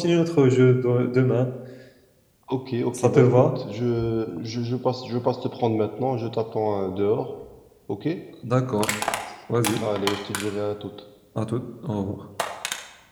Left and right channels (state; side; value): identical; both; correlation 1.00